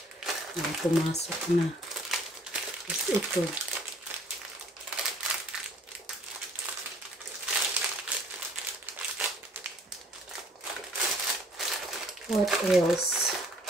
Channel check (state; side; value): normal; both; correlation 0.57